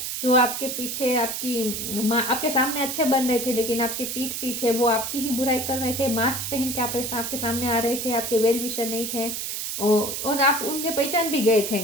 जो आपके पीछे आपके सामने अच्छे बन रहे थे लेकिन आपके पीठ पीछे वो आपकी ही बुराई कर रहे थे, मास्क पहन के आपके सामने आ रहे थे, आपके वेल विशर नहीं थे, और आप उनके पहचान भी गए थे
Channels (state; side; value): noise; right; hiss, 4 dB below the sound